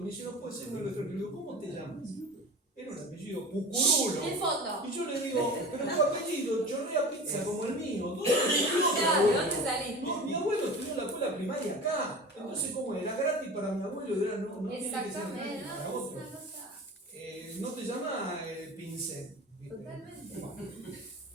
dice, no puede ser uno de los extranjeros. ¿Cómo te llamas? Era un apellido Pucurulo. En fondo. Y yo le digo, pero tu apellido chorrea pizza como el mío. ¿Dónde saliste? No, mi abuelo estudió en la escuela primaria acá. Entonces, ¿cómo era? Gratis para mi abuelo, era no tiene que ser gratis para otro. No te llama Pincel. Totalmente.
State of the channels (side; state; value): both; normal; correlation 0.35